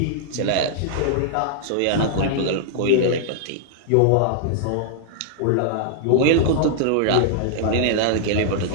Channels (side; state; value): both; different; correlation -0.01